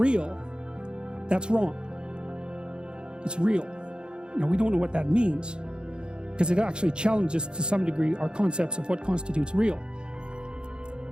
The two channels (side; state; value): left; late; 0.050 ms